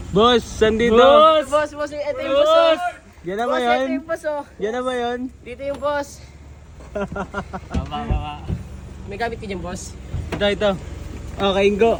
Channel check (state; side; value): identical; both; correlation 1.00